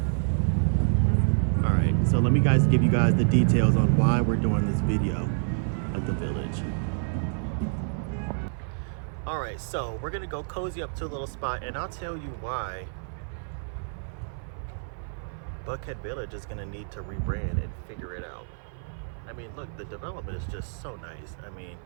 All right, so let me give you guys the details on why we're doing this video at the village. All right, so we're gonna go cozy up to a little spot, and I'll tell you why Buckhead Village is gonna need to rebrand and figure it out. I mean, look, the development is just so nice. I mean,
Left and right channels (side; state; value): left; silent; 56 dB below the other